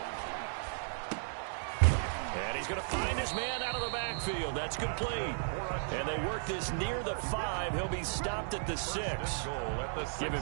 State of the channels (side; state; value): left; silent; digital silence